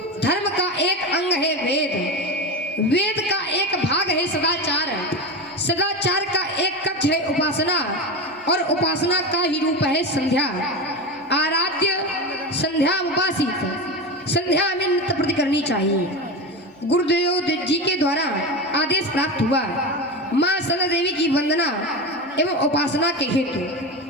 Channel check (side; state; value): both; normal; correlation 0.22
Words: धर्म का एक अंग है वेद, वेद का एक भाग है सदाचार, सदाचार का एक कक्ष है उपासना, और उपासना का ही रूप है संध्या। आराध्य संध्या उपासित, संध्या में नित्य प्रति करनी चाहिए। गुरुदेव जी के द्वारा आदेश प्राप्त हुआ माँ संत देवी की वंदना एवं उपासना के हेतु,